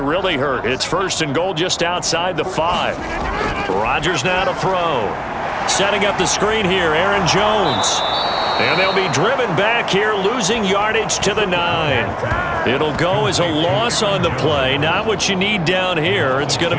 hurt. It's 1st and goal just outside the 5. Rodgers now to throw. Setting up the screen here, Aaron Jones. And they'll be driven back here, losing yardage to the 9. It'll go as a loss on the play. Not what you need down here. It's going to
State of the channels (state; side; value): identical; both; correlation 1.00